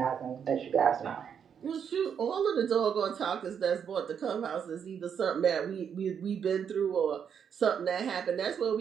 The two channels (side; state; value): left; quieter; 7.6 dB